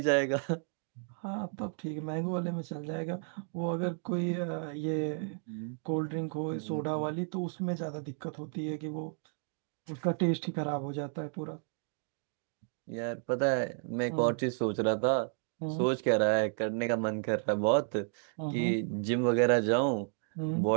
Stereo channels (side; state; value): left; silent; 56 dB below the other